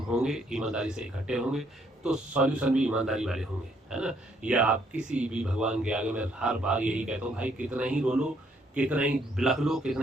ईमानदारी से इकट्ठे होंगे, तो सॉल्यूशन भी ईमानदारी वाले होंगे, है ना। या आप किसी भी भगवान के आगे, मैं हर बार यही कहता हूँ भाई, कितना ही रो लो, कितना ही बिलख लो,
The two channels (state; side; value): normal; both; correlation 0.69